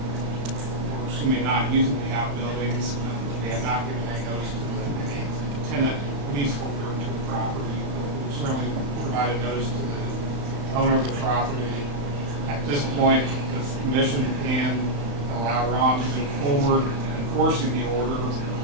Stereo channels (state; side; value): late; left; 34 ms